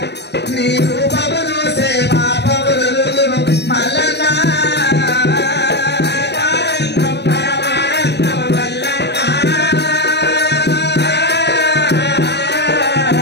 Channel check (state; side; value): late; right; 0.50 ms